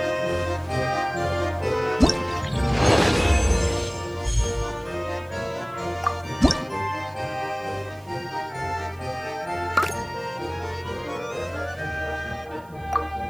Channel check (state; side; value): noise; right; hiss, 28 dB below the sound